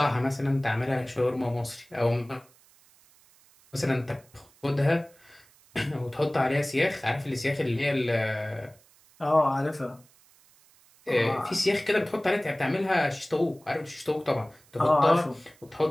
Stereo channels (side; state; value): right; noise; hiss, 29 dB below the sound